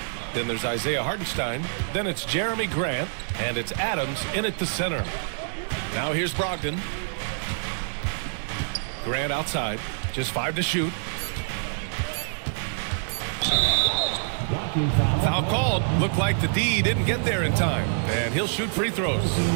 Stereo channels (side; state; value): left; silent; digital silence